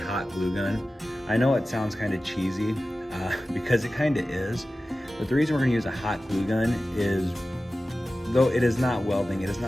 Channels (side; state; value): both; normal; correlation 0.95